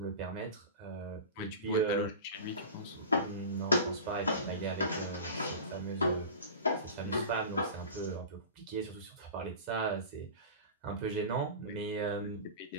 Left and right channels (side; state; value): both; inverted; correlation -0.33